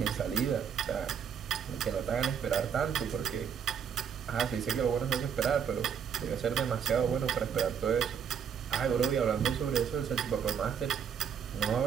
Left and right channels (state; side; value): quieter; left; 7.6 dB